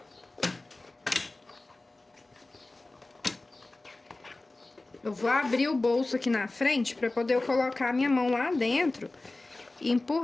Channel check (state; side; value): quieter; right; 3.0 dB